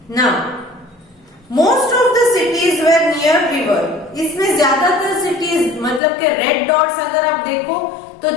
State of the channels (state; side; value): drops out; right; at 6.0 s